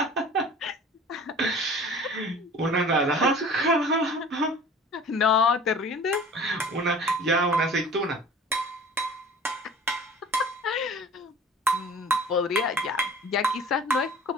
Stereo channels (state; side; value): normal; both; correlation 0.44